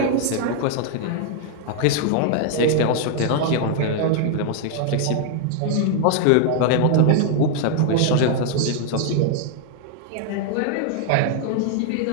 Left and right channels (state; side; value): different; both; correlation 0.00